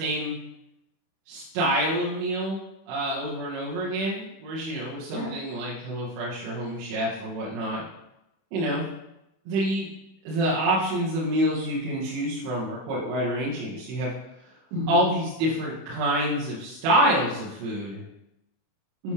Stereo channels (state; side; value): late; left; 31 ms